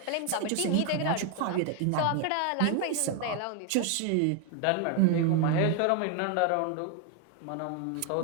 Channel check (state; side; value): different; both; correlation 0.01